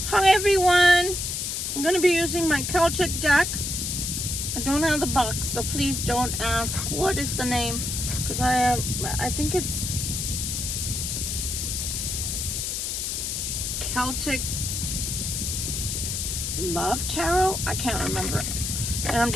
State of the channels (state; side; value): noise; left; hiss, 2 dB below the sound